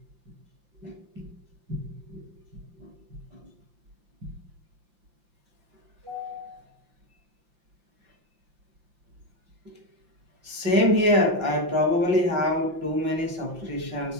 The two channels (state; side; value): late; left; 5.8 ms